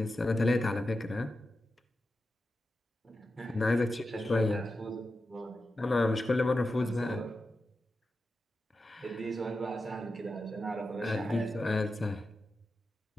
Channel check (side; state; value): both; normal; correlation 0.91